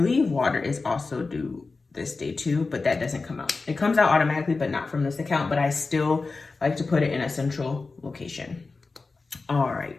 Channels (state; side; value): quieter; right; 3.9 dB